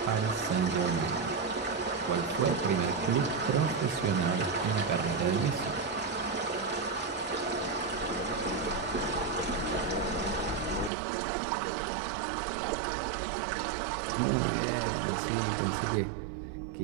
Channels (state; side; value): drops out; left; at 10.9 s